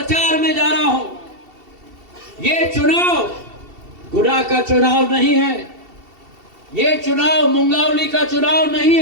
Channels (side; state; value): left; late; 2.7 ms